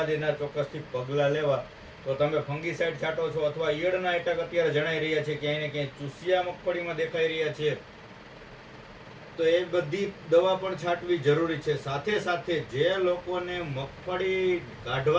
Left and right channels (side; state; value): both; identical; correlation 1.00